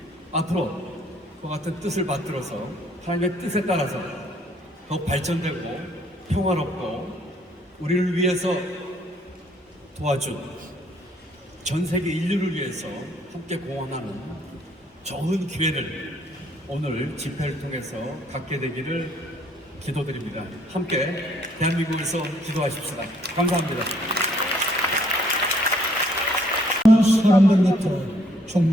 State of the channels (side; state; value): both; normal; correlation 0.65